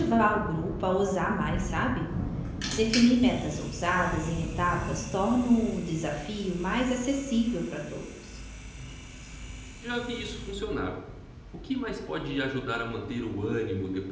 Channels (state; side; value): identical; both; correlation 1.00